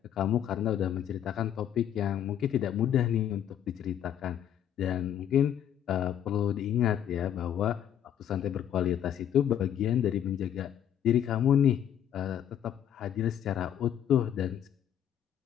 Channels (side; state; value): right; quieter; 10.0 dB